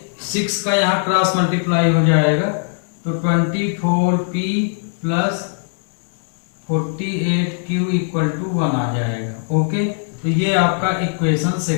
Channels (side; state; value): right; silent; digital silence